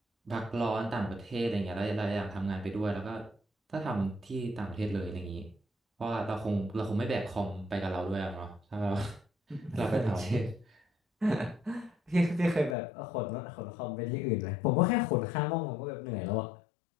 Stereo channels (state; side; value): drops out; right; at 12.8 s